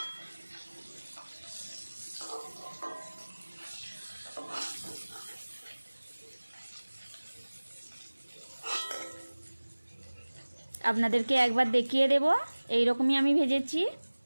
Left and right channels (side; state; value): both; inverted; correlation -1.00